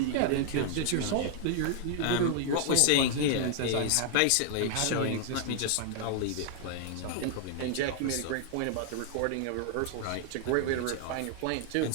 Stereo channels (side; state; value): both; different; correlation 0.00